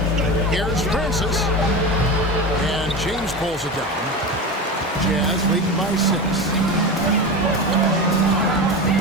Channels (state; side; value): normal; both; correlation 0.25